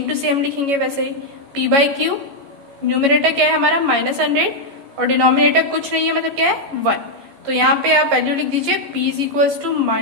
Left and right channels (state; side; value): late; left; 14 ms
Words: टू सेम लिखेंगे वैसे ही, p बाई क्यू। न्यूमरेटर क्या है हमारा -100 और डिनोमिनेटर कुछ नहीं है, मतलब क्या है 1। तो यहाँ पे आप वैल्यू लिख दीजिए p इज इक्वल्स टू